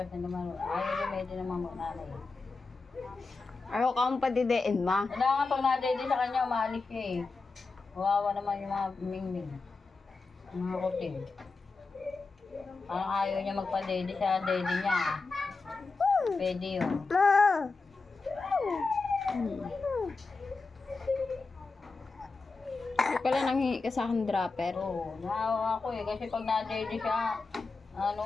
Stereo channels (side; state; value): right; quieter; 4.0 dB